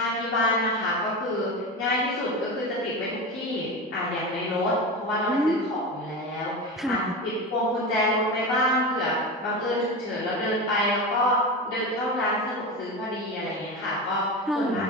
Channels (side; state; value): both; normal; correlation 0.23